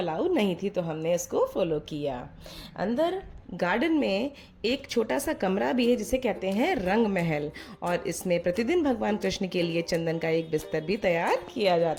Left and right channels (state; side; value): identical; both; correlation 1.00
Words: नहीं थी तो हमने इसको फॉलो किया। अंदर गार्डन में एक छोटा सा कमरा भी है जिसे कहते हैं रंग महल और इसमें प्रतिदिन भगवान कृष्ण के लिए चंदन का एक बिस्तर भी तैयार किया